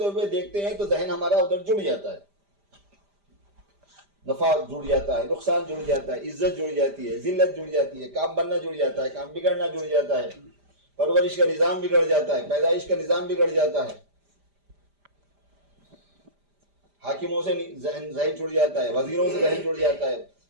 ہوئے دیکھتے ہیں تو ذہن ہمارا ادھر جڑ جاتا ہے، نفع جڑ جاتا ہے، نقصان جڑ جاتا ہے، عزت جڑ جاتی ہے، ذلت جڑ جاتی ہے، کام بننا جڑ جاتا ہے، کام بگڑنا جڑ جاتا ہے، پرورش کا نظام بگڑ جاتا ہے، پیدائش کا نظام بگڑ جاتا ہے، حاکموں سے ذہن جڑ جاتا ہے، وزیروں سے ذہن جڑ جاتا ہے،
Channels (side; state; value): left; late; 5.0 ms